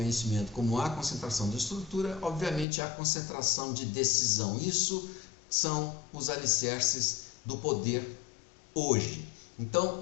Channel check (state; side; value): drops out; right; at 2.7 s